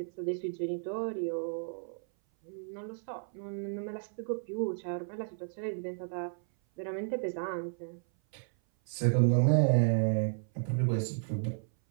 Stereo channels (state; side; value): silent; left; 56 dB below the other